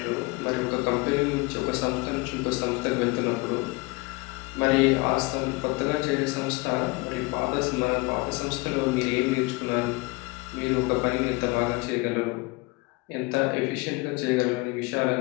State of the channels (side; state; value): right; quieter; 25.2 dB